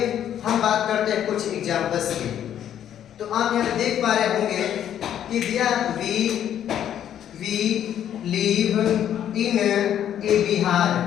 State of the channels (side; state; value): right; quieter; 10.3 dB